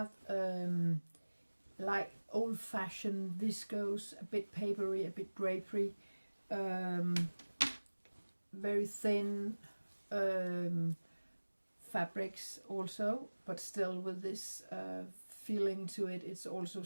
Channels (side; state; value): both; inverted; correlation -1.00